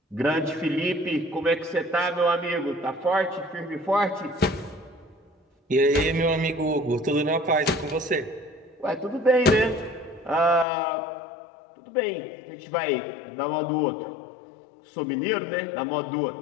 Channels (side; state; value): right; drops out; at 10.7 s